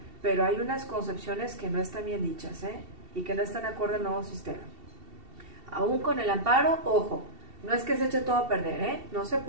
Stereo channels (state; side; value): late; left; 2.7 ms